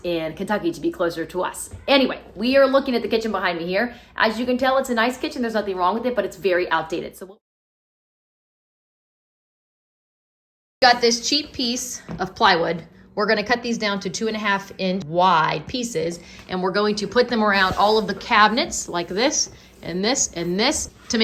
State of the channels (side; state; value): both; identical; correlation 1.00